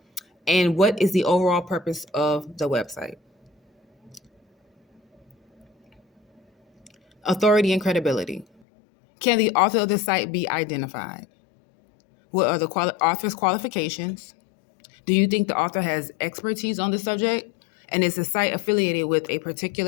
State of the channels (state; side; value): drops out; right; at 8.5 s